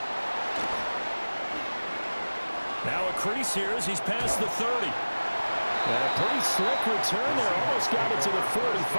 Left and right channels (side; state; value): both; inverted; correlation -1.00